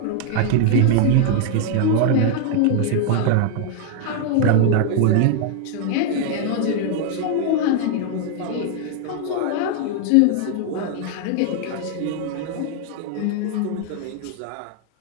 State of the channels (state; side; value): different; both; correlation 0.00